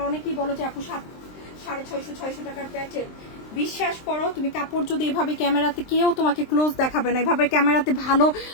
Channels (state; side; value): late; right; 23 ms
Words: অনেকেই বলো যে আপু 650-600 টাকার প্যাটার্ন, বিশ্বাস করো তুমি কাপড় যদি এভাবে ক্যামেরাতে, কেউ তোমাকে ক্লোজ দেখাবে না, এভাবে ক্যামেরাতে ভালো